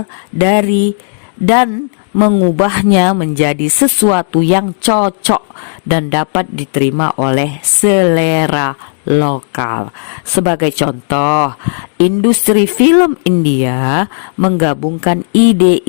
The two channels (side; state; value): right; silent; digital silence